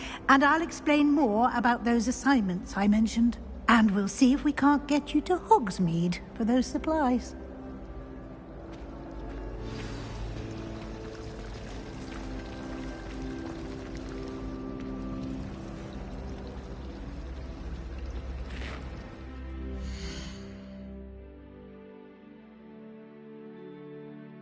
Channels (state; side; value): identical; both; correlation 1.00